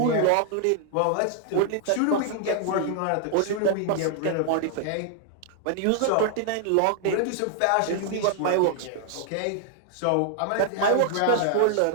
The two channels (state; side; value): different; both; correlation 0.00